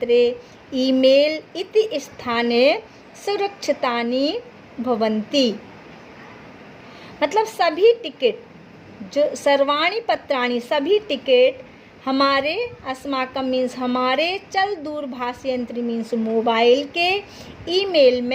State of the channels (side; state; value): both; identical; correlation 1.00